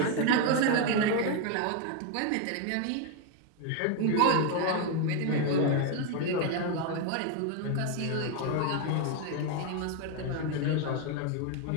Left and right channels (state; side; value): different; both; correlation 0.01